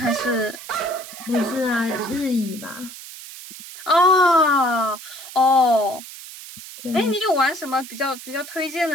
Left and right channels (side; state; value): right; noise; hiss, 14 dB below the sound